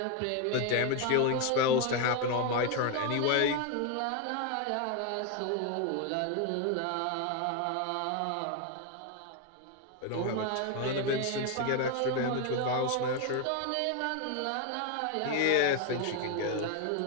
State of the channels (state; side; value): different; both; correlation 0.01